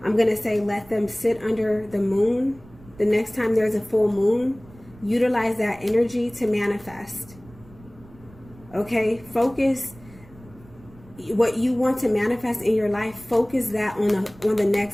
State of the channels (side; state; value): right; noise; rumble, 23 dB below the sound